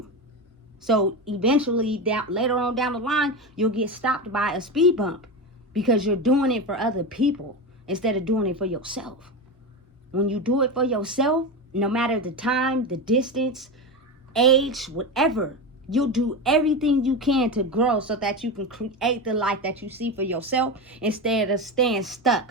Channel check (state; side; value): normal; both; correlation 0.19